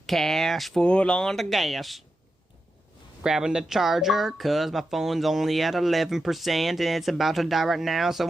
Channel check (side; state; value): both; normal; correlation 0.89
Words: cash, full on the gas. Grabbing the charger, cause my phone's only at 11% and it's about to die right now,